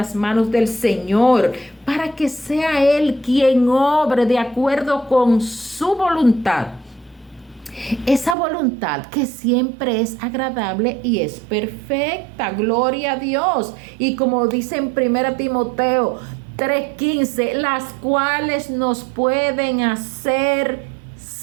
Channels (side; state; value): left; drops out; at 8.3 s